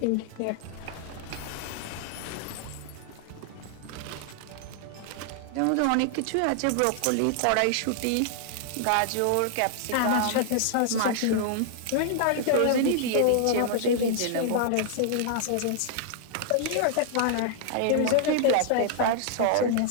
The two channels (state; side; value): different; both; correlation -0.01